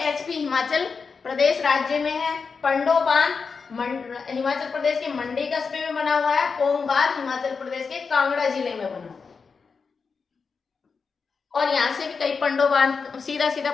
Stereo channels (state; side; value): quieter; right; 5.2 dB